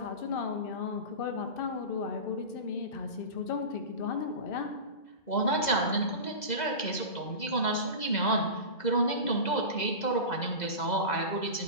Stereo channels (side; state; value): right; late; 2.0 ms